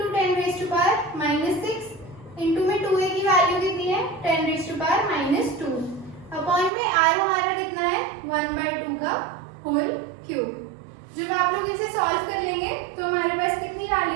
10⁻⁻6 इंटू में 2a की वैल्यू कितनी है? 10⁻⁻2 अपॉन में r हमारा कितना है? 1/2 का होल क्यूब। जब आप लोग इसे सॉल्व कर लेंगे तो हमारे पास कितनी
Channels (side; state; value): left; drops out; at 6.7 s